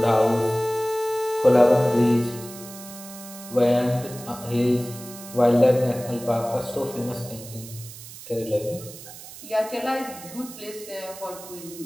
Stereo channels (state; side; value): noise; right; hiss, 15 dB below the sound